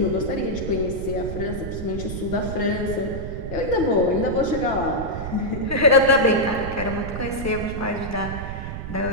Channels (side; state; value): right; noise; rumble, 7 dB below the sound